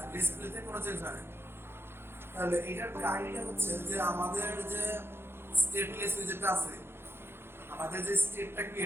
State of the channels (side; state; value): left; late; 0.11 ms